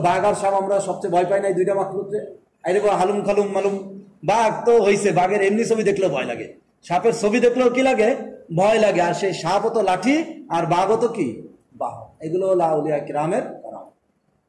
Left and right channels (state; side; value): identical; both; correlation 1.00